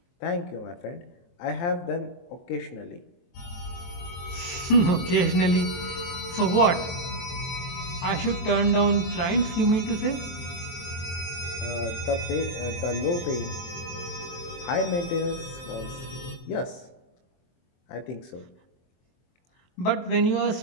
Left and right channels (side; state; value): right; late; 23 ms